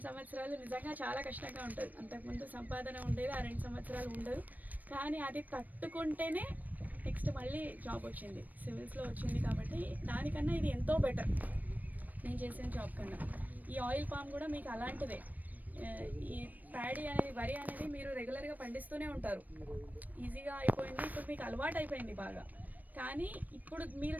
సంవత్సరాలు నిజంగా చాలా కష్టంగా ఉంటుంది. అంతకుముందు సంపాదన ఉండేది, ఆ 2 సంవత్సరాలు ఉండదు, కానీ అది తట్టుకుంటేనే నెక్స్ట్ మళ్ళీ జాబ్ వచ్చింది, సివిల్స్లో వచ్చింది. కాబట్టి దానికన్నా ఇది ఎంతో బెటర్ నేను చేసిన జాబ్ కన్నా. ఈ ఆయిల్ పామ్ కూడా మీకు అలాంటిదే. ఈ ప్యాడీ అనేది, వరి అనేది మీరు రెగ్యులర్గా పండిస్తూనే ఉంటారు, ఈజీగా అయిపోయింది, ఇప్పుడు మీకు అలవాటు అయిపోయింది బాగా. కానీ ఇప్పుడు మీరు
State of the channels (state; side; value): late; left; 0.082 ms